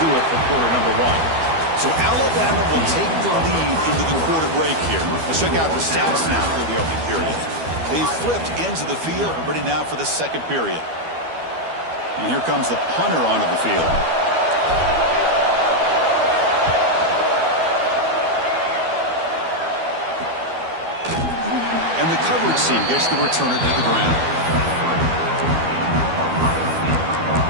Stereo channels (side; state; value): left; late; 12 ms